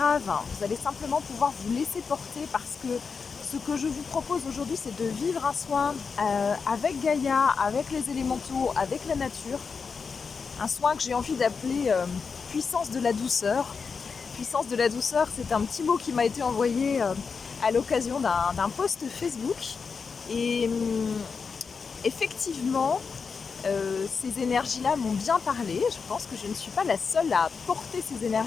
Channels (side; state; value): right; quieter; 5.4 dB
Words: Vous allez simplement pouvoir vous laisser porter parce que ce que je vous propose aujourd'hui, c'est de vivre un soin avec Gaïa, avec les élémentaux, avec la nature. Un soin que j'ai envie d'appeler puissance de la douceur. Puissance de la douceur, c'est un petit mot qui m'a été envoyé à l'occasion d'un post Facebook. Et effectivement, ces énergies-là m'ont bien parlé. Je pense que je ne suis pas la seule à porter ces